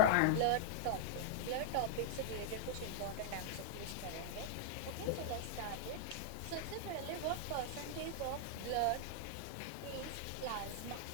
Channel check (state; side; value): different; both; correlation -0.01